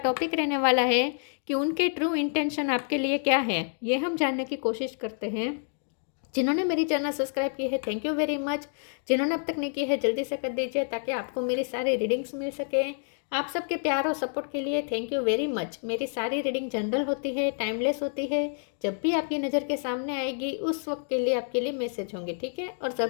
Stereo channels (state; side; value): silent; right; 59 dB below the other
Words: रहने वाला है कि उनके ट्रू इंटेंशन आपके लिए क्या है। ये हम जानने की कोशिश करते हैं। जिन्होंने मेरी चैनल सब्सक्राइब की है, थैंक यू वेरी मच। जिन्होंने अब तक नहीं की है, जल्दी से कर दीजिए ताकि आपको मेरी सारी रीडिंग्स मिल सके। आप सबके प्यार और सपोर्ट के लिए थैंक यू वेरी मच। मेरी सारी रीडिंग जनरल होती है, टाइमलेस होती है। जब भी आपकी नज़र के सामने आएगी उस वक्त के लिए आपके लिए मैसेज होंगे, ठीक है। और